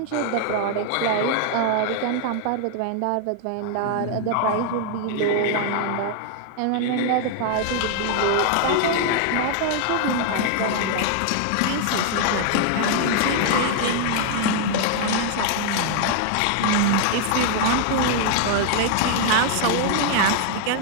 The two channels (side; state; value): both; different; correlation 0.00